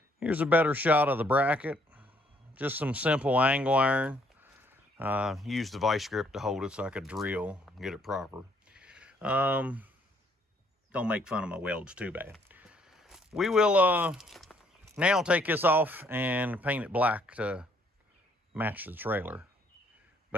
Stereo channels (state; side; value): normal; both; correlation 0.66